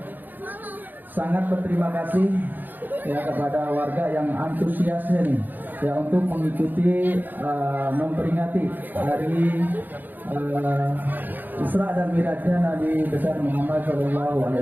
sangat berterima kasih ya kepada warga yang antusiasnya nih ya untuk mengikuti memperingati hari Isra dan Mi'rajnya Nabi besar Muhammad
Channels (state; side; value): late; left; 0.088 ms